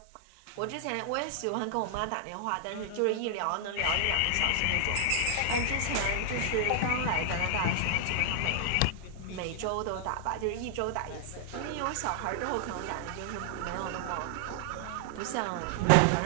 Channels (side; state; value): both; different; correlation 0.00